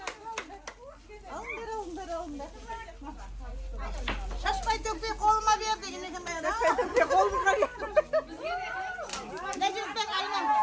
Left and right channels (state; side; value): identical; both; correlation 1.00